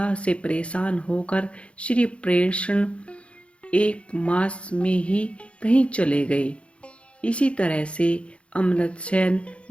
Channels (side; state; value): right; late; 0.060 ms